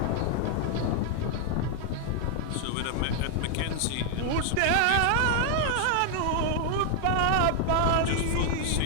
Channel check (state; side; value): different; both; correlation 0.00